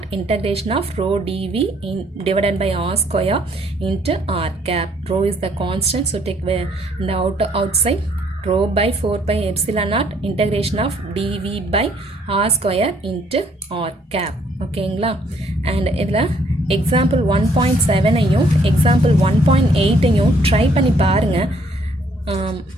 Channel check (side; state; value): both; normal; correlation 0.65